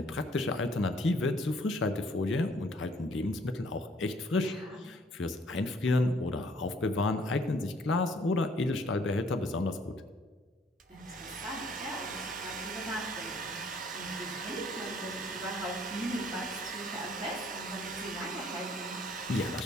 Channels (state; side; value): normal; both; correlation 0.61